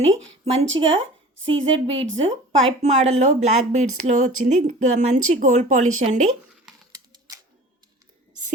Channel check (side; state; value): both; normal; correlation 0.42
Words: మంచిగా సీజెడ్ బీడ్స్ పైప్ మోడల్లో బ్లాక్ బీడ్స్లో వచ్చింది. మంచి గోల్డ్ పాలిష్ అండి.